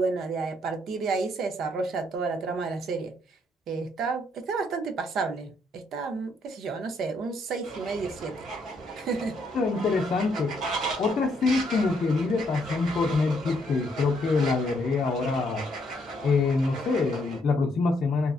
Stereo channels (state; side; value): normal; both; correlation 0.72